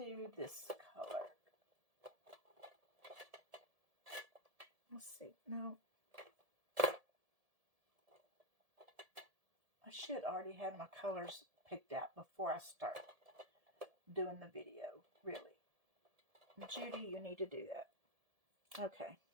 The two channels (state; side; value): late; left; 1.7 ms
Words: this color. Let's see. No. I should already have my colors picked out before I start doing the video, really. Judy, you need to do that. Okay.